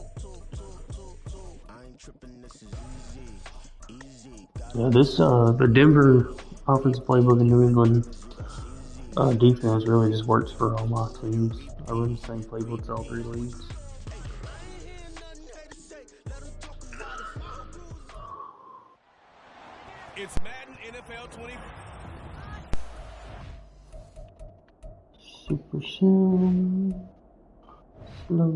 Yeah, the Denver offensive playbook in New England defense really just works for all my teams. I run the same playbooks all three leagues. It's Madden NFL 20. Super Sim.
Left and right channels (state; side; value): identical; both; correlation 1.00